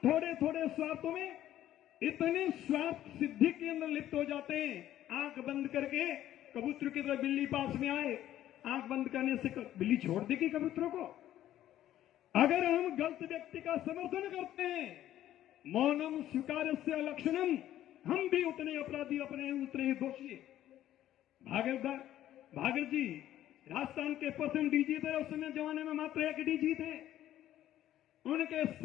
थोड़े स्वार्थों में इतने स्वार्थ सिद्धि के अंदर लिप्त हो जाते हैं, आंख बंद करके कबूतर की तरह बिल्ली पास में आए, आंख बंद करने से बिल्ली छोड़ देगी कबूतरों को। अगर हम गलत व्यक्ति का समर्थन करते हैं, मौनम स्वीकारस्य लक्षणम, हम भी उतने अपराधी, अपने उतने ही दोषी। भागीरथ जी राजस्थान के प्रथम डीजी थे। उस समय जमाने में मात्र एक डीजी थे। उनके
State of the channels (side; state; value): right; quieter; 12.6 dB